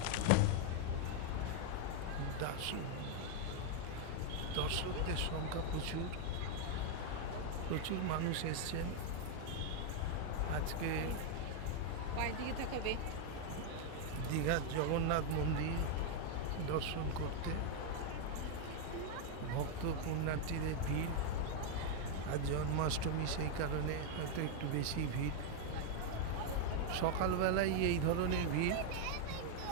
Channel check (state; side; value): different; both; correlation 0.00